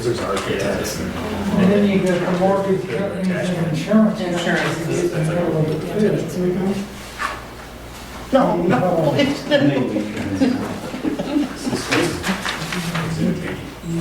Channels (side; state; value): both; identical; correlation 1.00